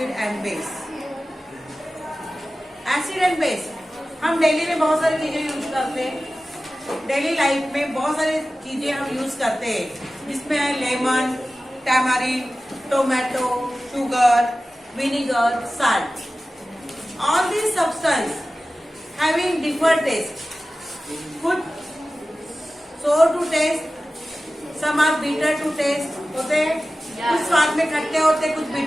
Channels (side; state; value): both; normal; correlation 0.95